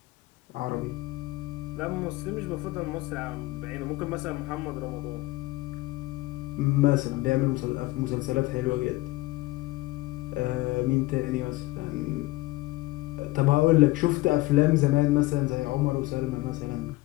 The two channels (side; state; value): right; quieter; 19.9 dB